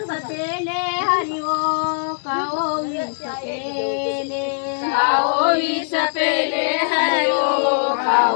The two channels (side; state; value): right; silent; 65 dB below the other